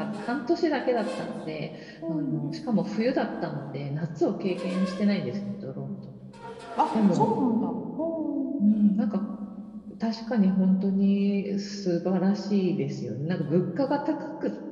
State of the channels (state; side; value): identical; both; correlation 1.00